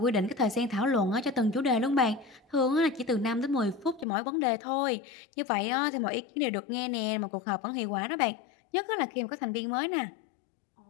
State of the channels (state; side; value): drops out; right; at 4.0 s